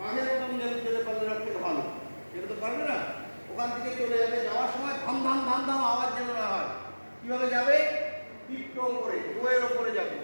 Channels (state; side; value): inverted; both; correlation -1.00